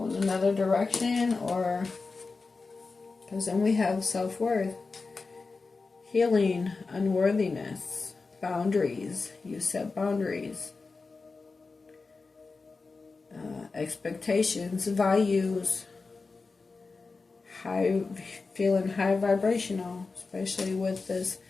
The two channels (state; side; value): quieter; right; 4.1 dB